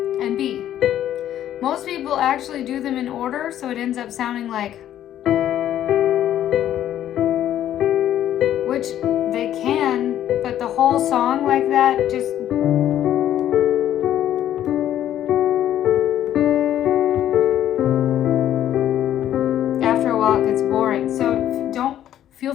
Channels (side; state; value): right; quieter; 11.5 dB